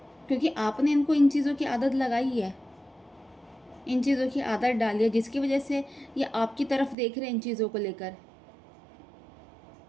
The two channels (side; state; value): left; drops out; at 7.0 s